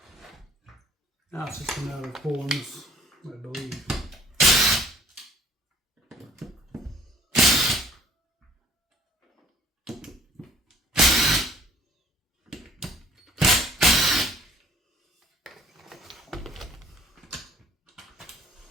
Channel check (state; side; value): normal; both; correlation 0.55